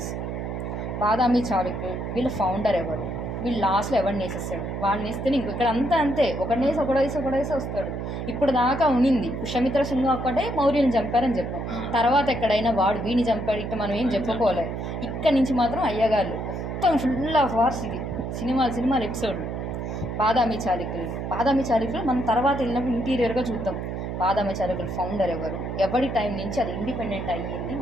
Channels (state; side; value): noise; right; hum, 4 dB below the sound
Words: బాదామి చాళుక్యులు వీళ్ళ ఫౌండర్ ఎవరు? వీళ్ళు లాస్ట్లో ఎవరిని వేసేస్తాడు? వాడిని వేస్తే ఇంకో ఇక్కడ అంతా అంతే, ఒకడేసి వస్తాడు. ఇప్పుడు దాకా ఉనింది పుష్యమిత్ర సింగ్ ఒక్కటే మౌర్యుని చంపారని చెప్పాం. తర్వాత ఎక్కడైనా వాడు వీడిని చంపాడు ఇట్లా మనం ఏం చెప్పుకోలేదు. ఇక్కడ నుంచి మాత్రం అయ్యగాళ్ళు మొత్తం ఫుల్ ఆఫ్ వార్స్. ఇది సినిమాలు ఎపిసోడ్లు. బాదామి చాళుక్యులు మనం తర్వాత వెళ్ళినప్పుడు ఇంటీరియర్గా చూద్దాం. బాదామి చాళుక్యుల ఫౌండర్ ఎవరు, ఎవరి టైం నుంచి అది ఇండిపెండెంట్ అయ్యింది,